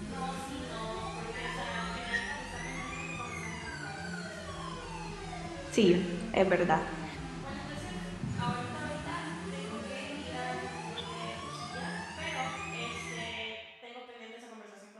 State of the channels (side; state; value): both; identical; correlation 1.00